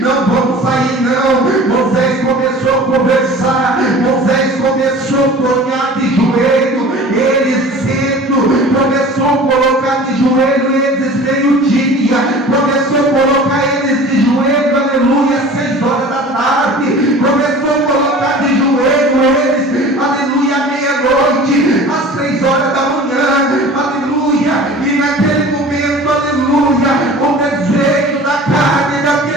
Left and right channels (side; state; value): both; normal; correlation 0.42